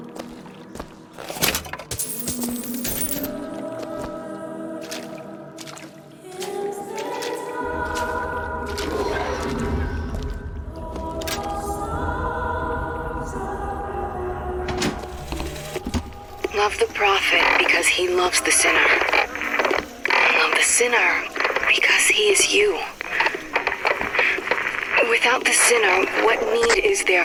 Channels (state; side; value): identical; both; correlation 1.00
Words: Love the prophet because he loves the sinner. Love the sinner because he is you. Without the sinner, what need is there